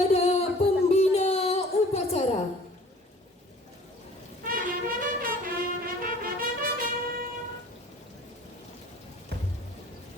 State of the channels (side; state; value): both; normal; correlation 0.49